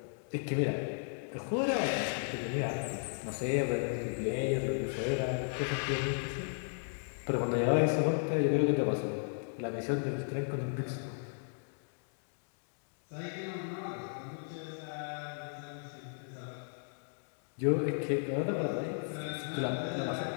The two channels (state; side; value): silent; right; digital silence